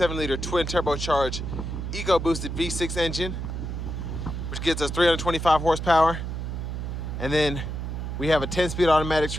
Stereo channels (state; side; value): noise; right; hum, 4 dB below the sound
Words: liter twin turbocharged eco boosted V6 engine, which gives us 325 horsepower. And then we have a 10-speed automatic